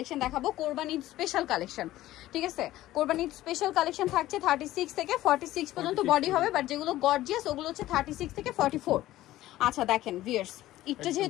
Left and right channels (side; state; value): right; quieter; 15.3 dB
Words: দেখাবো। কোরবানি স্পেশাল কালেকশন, ঠিক আছে। কোরবানি স্পেশাল কালেকশন থাকছে 36 থেকে 46 পর্যন্ত বডি হবে, বাট যেগুলো গর্জিয়াস ওগুলো হচ্ছে 36 থেকে 44। আচ্ছা দেখেন ভিউয়ার্স, এটা